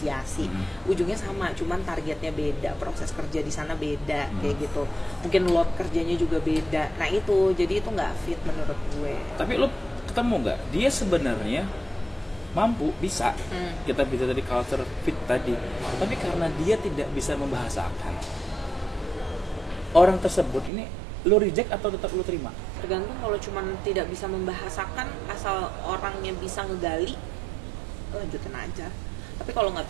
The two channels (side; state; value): left; drops out; at 20.7 s